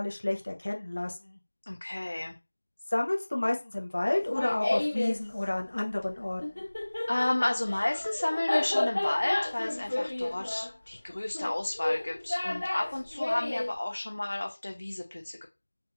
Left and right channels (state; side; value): inverted; both; correlation -1.00